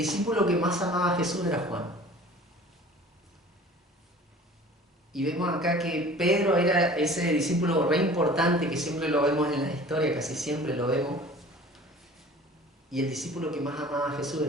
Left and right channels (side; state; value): both; normal; correlation 0.45